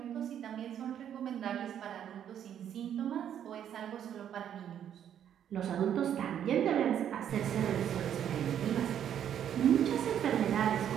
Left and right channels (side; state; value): left; quieter; 9.6 dB